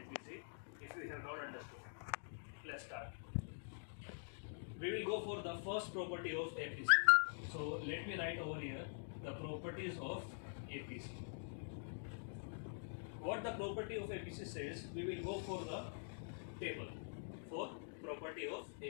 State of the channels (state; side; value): silent; right; digital silence